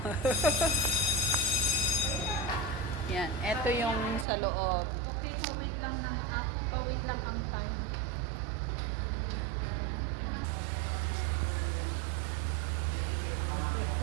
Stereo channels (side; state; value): left; drops out; at 4.2 s